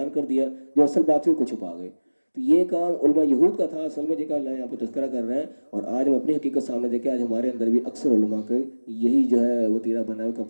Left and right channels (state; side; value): inverted; both; correlation -1.00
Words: کر دیا جو اصل بات تھی کو چھپا گئے۔ تو یہ کام علماء یہود کا تھا اصل میں، جن کا اللہ یہاں پہ تذکرہ کر رہے ہیں، اور آج ہم اپنی حقیقت سامنے دیکھیں، آج ہمارے اندر بھی اکثر علماء کا یہی جو ہے وہ تیرا بنا ہے کہ